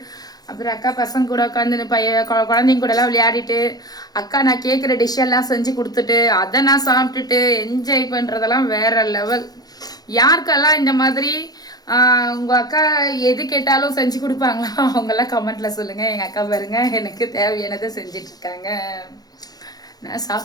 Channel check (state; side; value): late; right; 0.19 ms